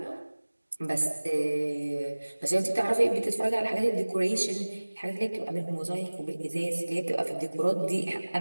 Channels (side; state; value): both; inverted; correlation -1.00